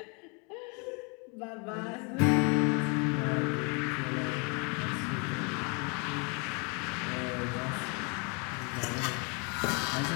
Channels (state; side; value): quieter; right; 33.6 dB